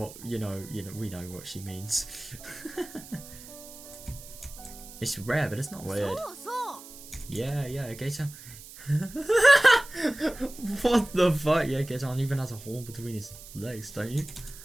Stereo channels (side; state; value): right; noise; hiss, 16 dB below the sound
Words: we know what she means. It's rare, but it's not weird. Yeah, Gator. What the fuck? Yeah, Gator even has a horn between his legs, don't you?